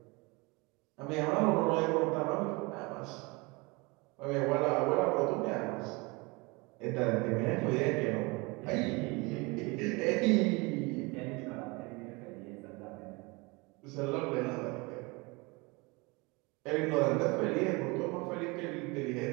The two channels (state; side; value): quieter; left; 26.4 dB